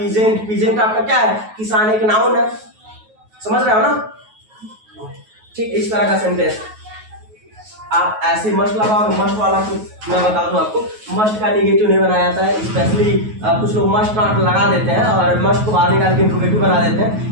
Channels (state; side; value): late; left; 9.3 ms